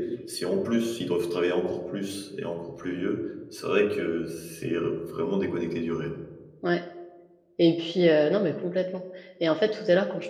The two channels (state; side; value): identical; both; correlation 1.00